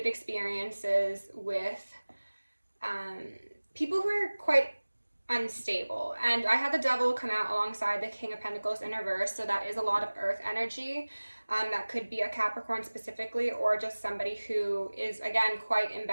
experiences with people who are quite unstable. And I had the Devil come out alongside the King of Pentacles in reverse, so that is a lot of earth energy. That could be a Capricorn specifically, or just somebody who is, again, quite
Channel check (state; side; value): inverted; both; correlation -1.00